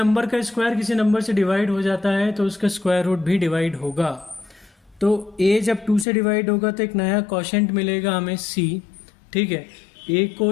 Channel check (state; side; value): drops out; right; at 6.1 s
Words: का स्क्वायर किसी नंबर से डिवाइड हो जाता है तो उसका स्क्वायर रूट भी डिवाइड होगा। तो a जब 2 से डिवाइड होगा तो एक नया क्वोशिएंट मिलेगा हमें c, ठीक है। a